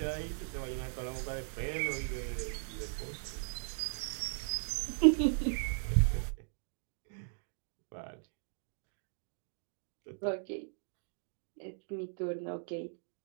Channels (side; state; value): left; silent; digital silence